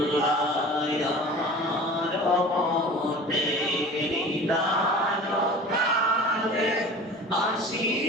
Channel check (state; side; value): normal; both; correlation 0.40